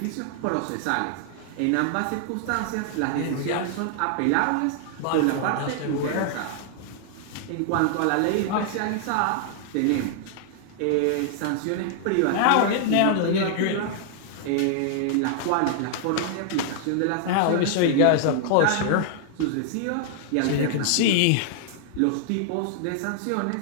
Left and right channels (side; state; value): both; different; correlation -0.01